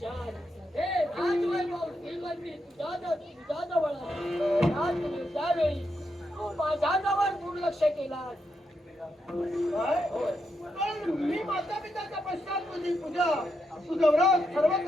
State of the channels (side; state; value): both; normal; correlation 0.82